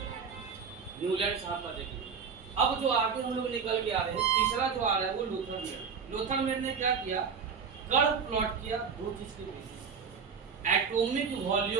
न्यूलैंड साहब का देख लिए। अब जो आगे हम लोग निकल के आ रहे हैं, तीसरा जो आ रहा है वो लोथर मेयर। लोथर मेयर ने क्या किया? कर्व प्लॉट किया दो चीज के बेसिस, एटॉमिक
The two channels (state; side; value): quieter; left; 6.1 dB